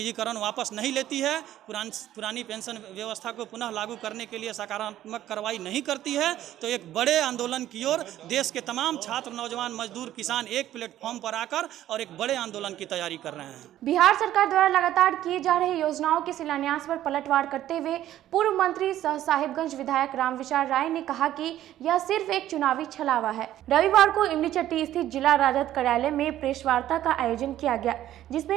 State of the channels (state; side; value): quieter; left; 12.8 dB